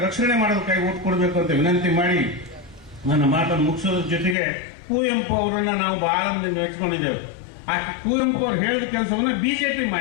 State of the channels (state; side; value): drops out; right; at 4.4 s